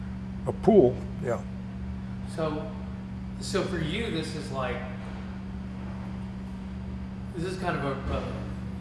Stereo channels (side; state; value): both; identical; correlation 1.00